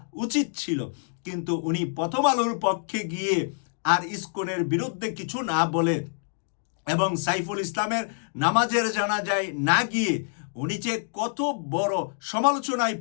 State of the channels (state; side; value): silent; right; digital silence